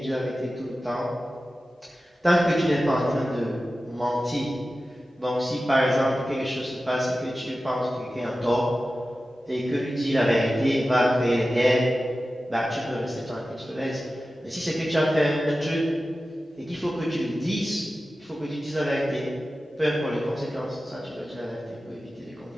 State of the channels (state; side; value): normal; both; correlation 0.94